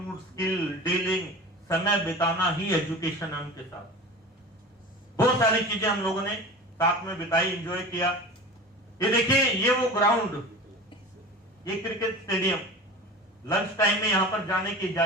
स्किल, डीलिंग, समय बिताना ही एजुकेशन है उनके साथ। बहुत सारी चीजें हम लोगों ने साथ में बिताई, एंजॉय किया। ये देखिए, ये वो ग्राउंड, ये क्रिकेट स्टेडियम, लंच टाइम में यहां पर जाने की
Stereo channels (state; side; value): normal; both; correlation 0.35